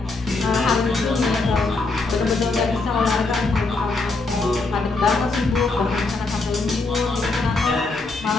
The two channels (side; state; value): right; quieter; 3.6 dB